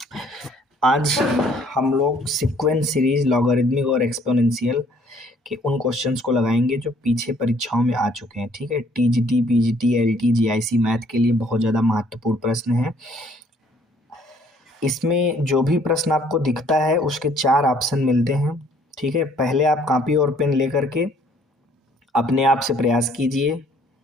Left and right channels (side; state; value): both; normal; correlation 0.61